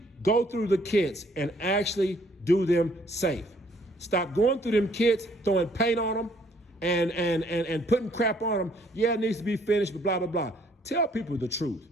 go through the kits and actually do them safe. Stop going through them kits, throwing paint on them and putting crap on them. Yeah, it needs to be finished, but blah, blah, blah. Tell people the truth,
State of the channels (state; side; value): normal; both; correlation 0.64